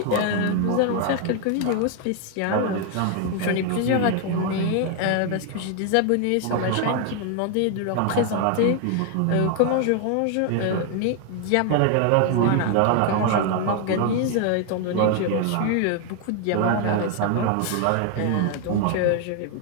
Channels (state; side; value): different; both; correlation 0.00